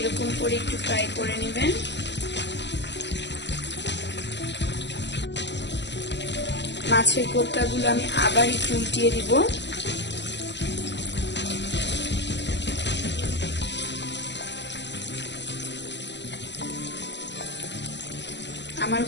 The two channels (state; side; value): late; right; 0.51 ms